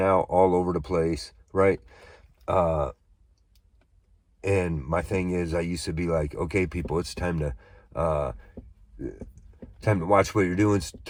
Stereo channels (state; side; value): identical; both; correlation 1.00